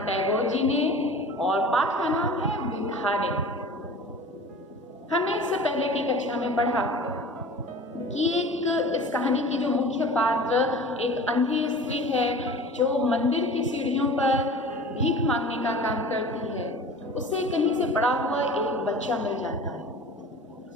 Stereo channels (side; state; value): both; normal; correlation 0.40